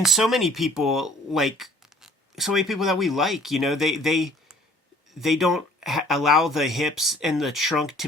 so many people, that we like, you know, they don't allow the hips and the trunk to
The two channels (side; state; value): both; normal; correlation 0.54